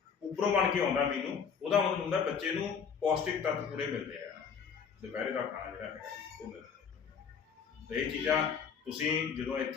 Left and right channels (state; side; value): quieter; right; 6.5 dB